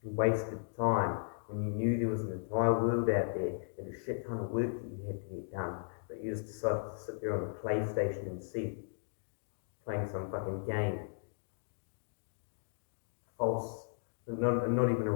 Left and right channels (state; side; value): silent; right; digital silence